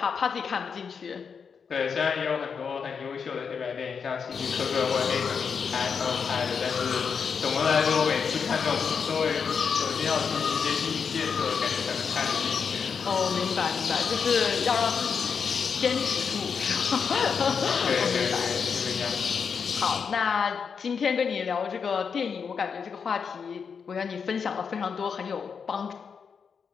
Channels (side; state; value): right; quieter; 6.2 dB